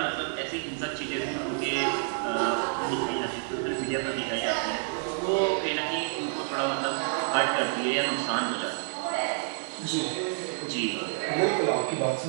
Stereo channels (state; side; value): silent; left; 59 dB below the other